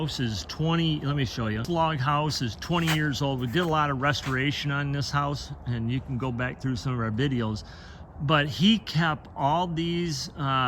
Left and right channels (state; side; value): identical; both; correlation 1.00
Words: is 20, let me show you. This log house is 20 years old. We did a lot of restoration on this house, and you can go back through some of our videos. But he kept all these